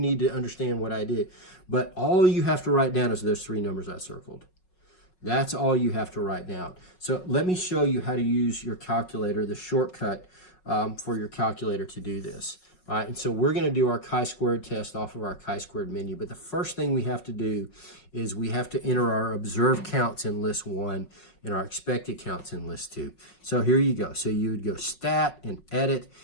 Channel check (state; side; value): late; right; 5.4 ms